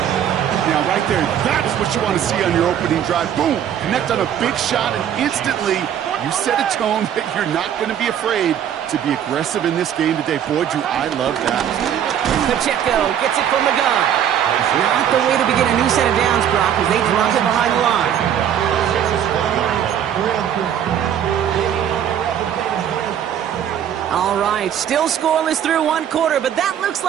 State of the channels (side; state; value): left; quieter; 9.6 dB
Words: Now, right there, that's what you want to see on your opening drive. Boom! Connect on a big shot, and instantly you set a tone that you're not going to be afraid to be aggressive in this game today. Boy, do I love that. Pacheco gets it from the gun. Not the way to begin a new set of downs, Brock, as they drop it behind the line. All right, still scoreless through 1 quarter, but that looks